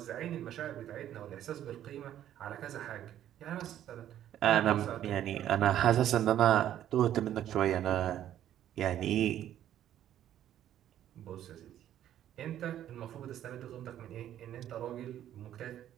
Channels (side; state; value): left; quieter; 11.4 dB